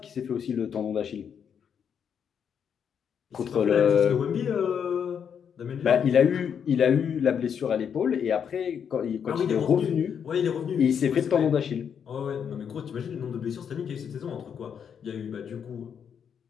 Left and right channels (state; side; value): quieter; right; 7.6 dB